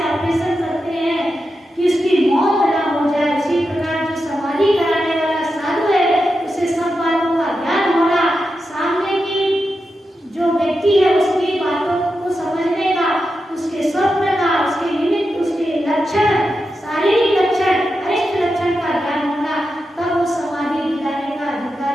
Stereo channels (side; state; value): both; normal; correlation 0.89